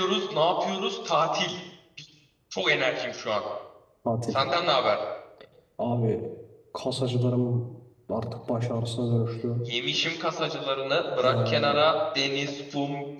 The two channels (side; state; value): both; identical; correlation 1.00